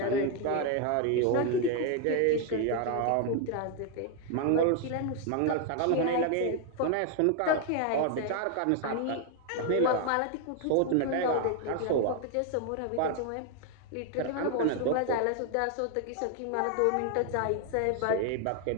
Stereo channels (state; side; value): different; both; correlation 0.01